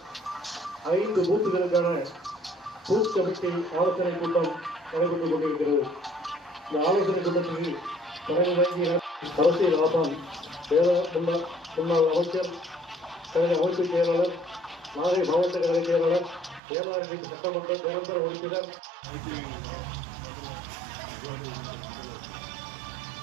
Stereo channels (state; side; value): drops out; left; at 16.6 s